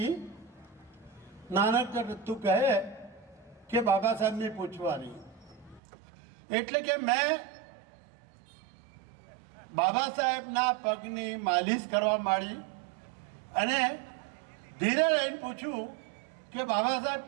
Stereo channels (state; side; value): drops out; left; at 5.8 s